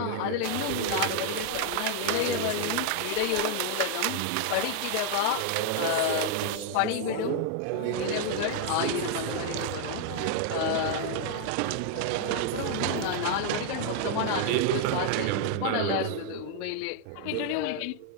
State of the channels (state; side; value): different; both; correlation 0.00